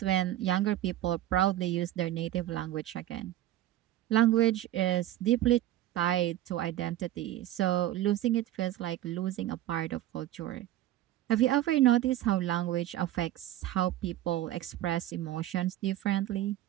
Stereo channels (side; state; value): left; quieter; 13.7 dB